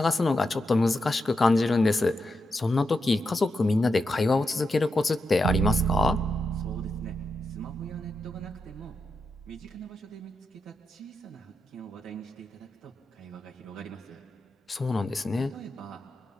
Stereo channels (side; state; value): both; normal; correlation 0.86